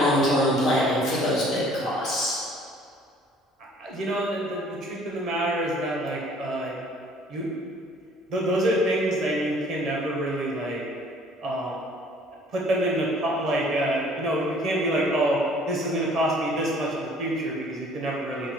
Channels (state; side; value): normal; both; correlation 0.55